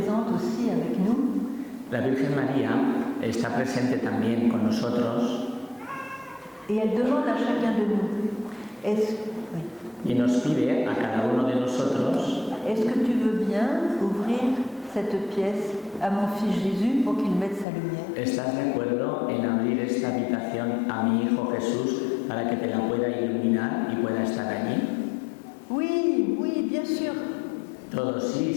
aussi avec nous. La Virgen María está presente también con nosotros. Et elle demande à chacun de nous, Y nos pide a cada uno de nosotros, est-ce que tu veux bien ouvrir cette pièce à mon fils Jésus pour qu'il mette sa lumière? ¿estás de acuerdo en abrir esta habitación a mi hijo Jesús para que te la pueda iluminar y pueda estar allí? Oui, oui, bien sûr. Todos, sí,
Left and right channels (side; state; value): right; drops out; at 17.7 s